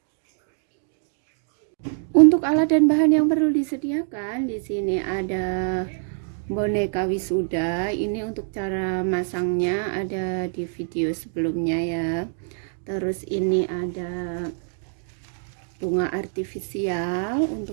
Untuk alat dan bahan yang perlu disediakan, di sini ada boneka wisuda. Ini untuk cara masangnya ada di video sebelumnya ya. Terus ini ada bunga artifisial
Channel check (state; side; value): silent; left; digital silence